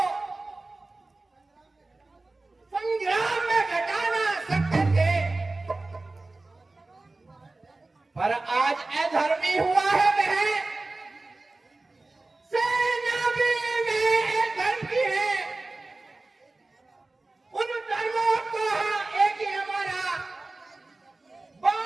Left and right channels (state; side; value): quieter; left; 3.2 dB